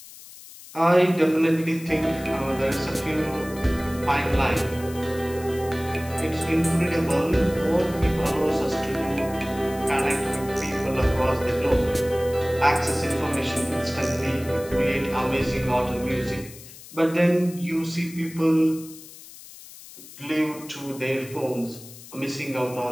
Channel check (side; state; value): left; noise; hiss, 17 dB below the sound